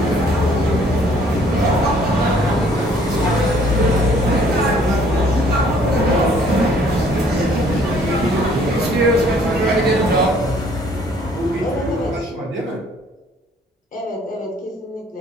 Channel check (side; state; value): both; normal; correlation 0.60